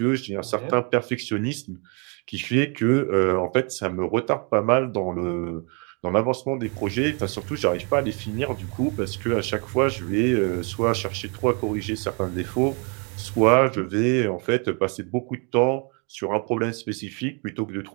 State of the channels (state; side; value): quieter; left; 35.0 dB